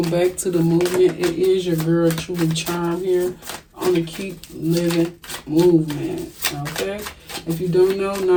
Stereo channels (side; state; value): both; identical; correlation 1.00